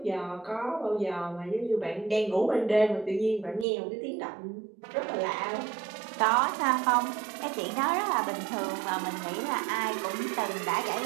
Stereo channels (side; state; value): left; drops out; at 3.7 s